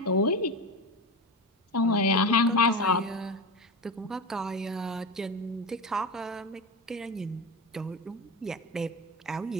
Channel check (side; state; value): both; normal; correlation 0.22